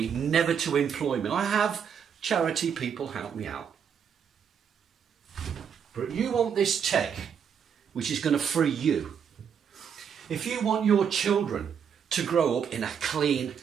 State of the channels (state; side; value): quieter; left; 7.5 dB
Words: never to employ me. I have charity people help me out. But you want this tech, which is going to free you. If you want your children to grow up in a clean,